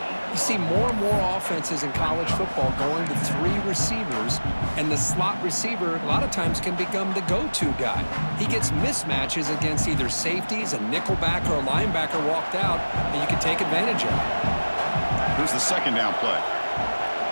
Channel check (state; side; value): inverted; both; correlation -1.00